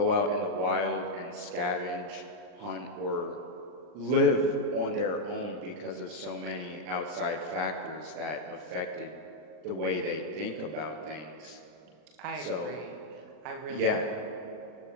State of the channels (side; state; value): left; late; 40 ms